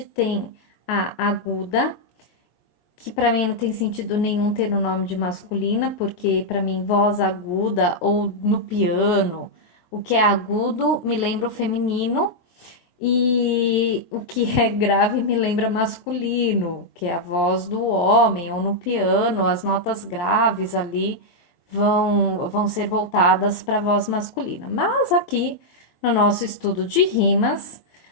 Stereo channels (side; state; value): right; late; 23 ms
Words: tem a aguda, que para mim não tem sentido nenhum ter o nome de masculina, porque para mim voz aguda ou no piano, o que é agudo me lembra o feminino e o que é grave me lembra masculino, que é a voz do homem, ou no piano, as notas graves ali vão ser voltadas para a voz masculina. Mas aqui, no nosso estudo de rimas,